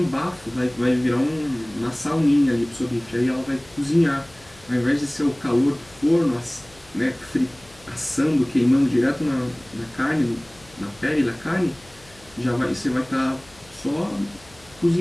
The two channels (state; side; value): noise; left; hum, 26 dB below the sound